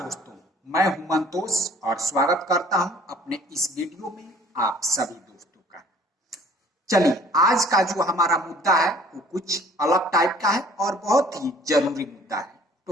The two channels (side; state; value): both; normal; correlation 0.54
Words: मैं हूं मंतोष और स्वागत करता हूं अपने इस वीडियो में आप सभी दोस्तों का। चलिए, आज का जो हमारा मुद्दा है वो कुछ अलग टाइप का है और बहुत ही जरूरी मुद्दा है।